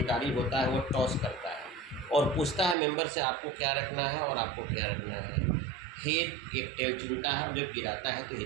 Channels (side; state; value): left; drops out; at 2.8 s